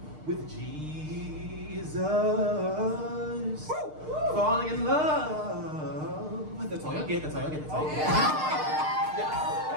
with Jesus. Falling in love. That's all you'll get, Yes. I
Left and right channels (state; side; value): late; left; 6.6 ms